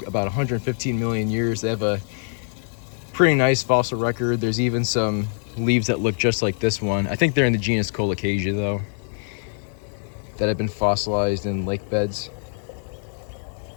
115 million years. They have a pretty nice fossil record. There's even some leaves that look just like this one. I think they're in the genus Colocasia though, that have been fossilized in lake beds.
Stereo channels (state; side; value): silent; right; 63 dB below the other